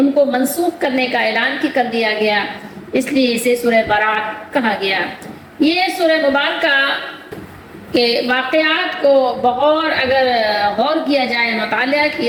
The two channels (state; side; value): identical; both; correlation 1.00